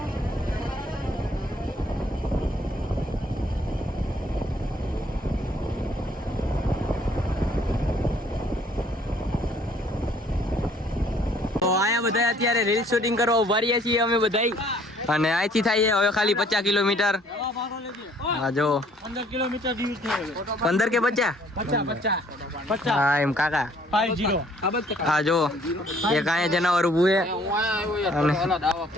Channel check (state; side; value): normal; both; correlation 0.60